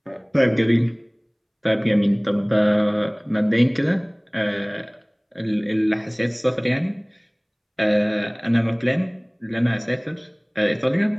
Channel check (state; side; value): identical; both; correlation 1.00